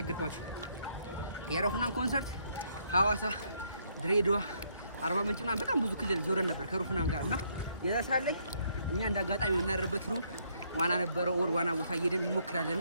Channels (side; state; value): both; inverted; correlation -0.71